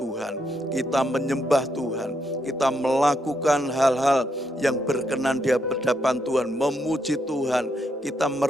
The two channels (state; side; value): normal; both; correlation 0.79